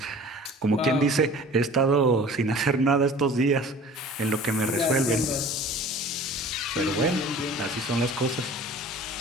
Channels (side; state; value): both; normal; correlation 0.44